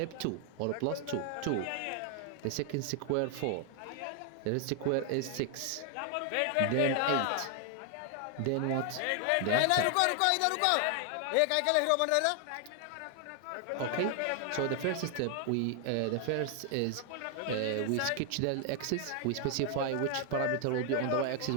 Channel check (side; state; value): both; different; correlation 0.00